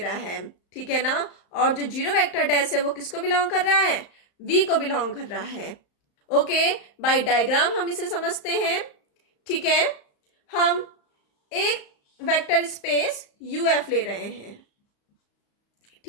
है. ठीक है ना, और जो जीरो वेक्टर डैश है वो किसको बिलोंग कर रहा है, V को बिलोंग कर रहा है. ओके, बाय डायग्राम हम इसे समझते हैं. ठीक है, हम एक वेक्टर स्पेस UF ले रहे हैं,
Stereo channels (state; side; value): late; right; 35 ms